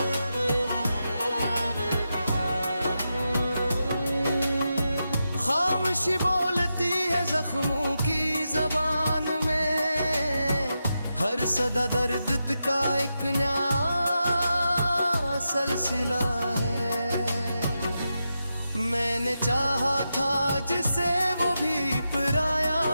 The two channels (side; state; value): both; inverted; correlation -0.88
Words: खामोशी बोलती है जख्मों की जबान में, हर सदा दर्द का एक नया सिलसिला है। मैंने चाहा था जिसे वो भी पराया